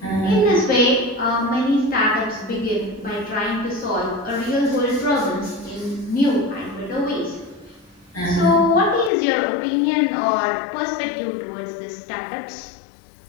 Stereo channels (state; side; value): drops out; right; at 9.1 s